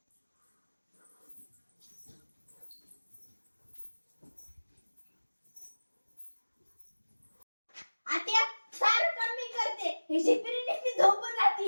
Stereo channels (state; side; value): inverted; both; correlation -1.00